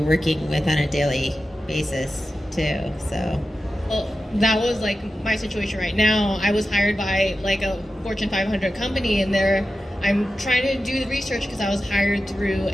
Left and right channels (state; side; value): normal; both; correlation 0.92